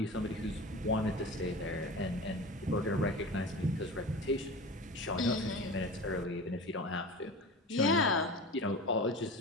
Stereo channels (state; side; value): normal; both; correlation 0.32